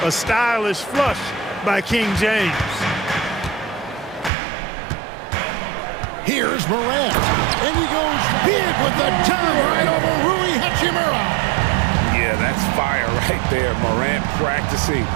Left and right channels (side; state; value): left; drops out; at 4.3 s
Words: A stylish flush by King James. Here's Morant, and he goes big with the turn right over Rui Hachimura. Yeah, that's fire right there. Morant practicing